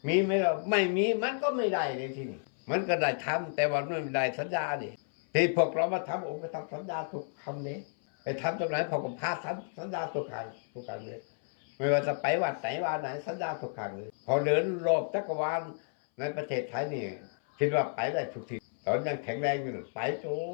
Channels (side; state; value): right; silent; 57 dB below the other